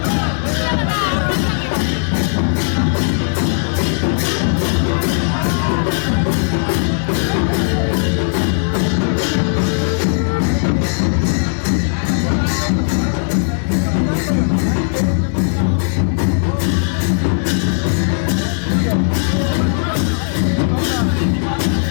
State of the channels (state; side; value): silent; right; 68 dB below the other